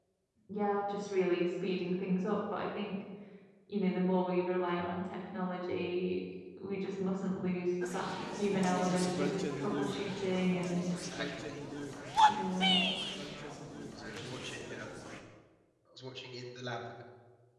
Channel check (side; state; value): both; identical; correlation 1.00